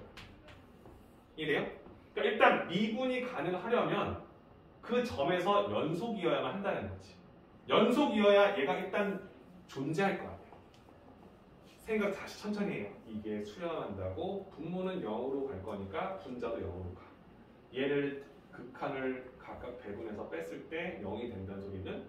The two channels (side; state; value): both; identical; correlation 1.00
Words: 이해돼요? 그러니까 일단 미분이 가능하려면 그 점에서 연속이어야만 한다는 거지. 연속이어야 얘가 일단 존재할 것 같아요. 생각 다시 천천히 해요. 이게 수렴한다고 분모는 0으로 갈 거니까 분자도 0으로 가. 얘를 극한을 각각 배분해서 뺐을 때 0이 된다는 소리는